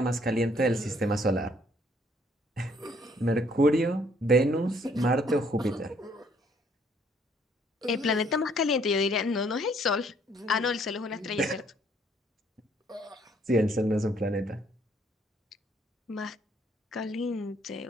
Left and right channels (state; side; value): normal; both; correlation 0.65